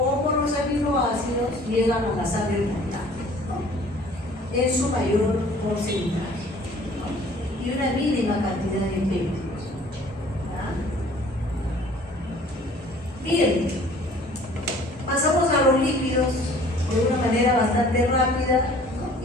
los aminoácidos llegan a la sangre portal, ¿no? En su mayor porcentaje, ¿no? Y una mínima cantidad de péptidos. Bien, pasamos a los lípidos de una manera bastante rápida, ¿no?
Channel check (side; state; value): both; normal; correlation 0.52